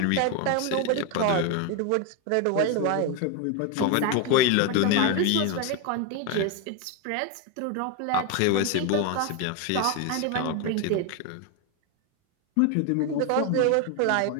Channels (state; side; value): different; both; correlation 0.01